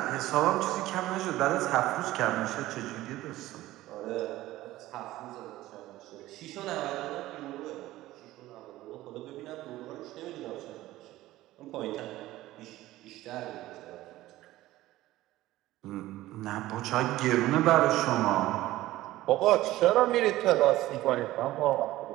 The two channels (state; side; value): quieter; left; 16.2 dB